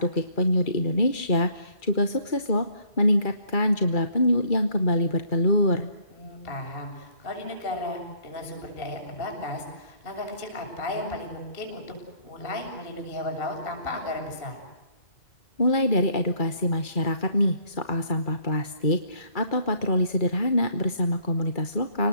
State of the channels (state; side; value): late; right; 2.3 ms